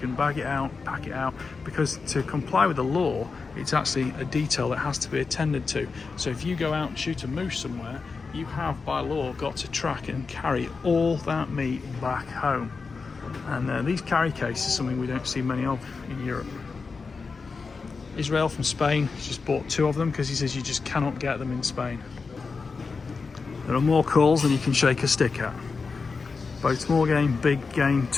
bag it out, pack it out, because to comply with the law, it's actually a detail that has to be attended to. So if you go out and shoot a moose somewhere, you have by law got to track and carry all that meat back home. And these carry cases are something we don't see many of in Europe. Israel from Spain has just bought 2 of them because he says you just cannot get them in Spain. There are more calls than you can shake a stick at. Both small game, big game.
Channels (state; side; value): quieter; right; 4.6 dB